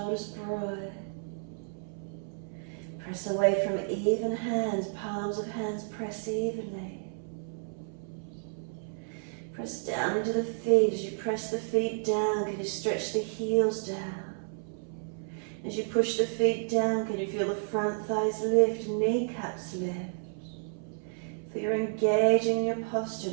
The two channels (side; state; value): left; silent; 57 dB below the other